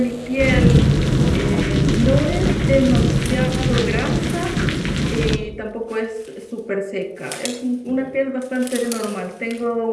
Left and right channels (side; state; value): both; identical; correlation 1.00